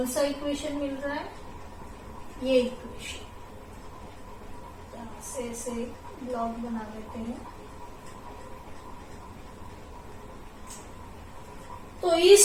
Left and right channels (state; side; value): identical; both; correlation 1.00